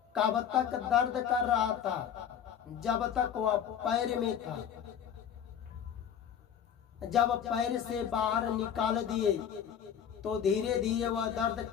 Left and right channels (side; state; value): right; quieter; 8.6 dB